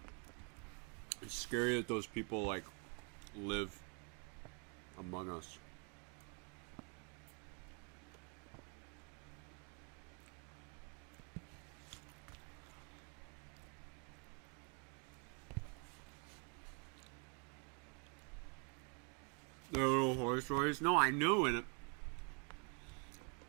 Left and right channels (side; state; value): left; quieter; 37.6 dB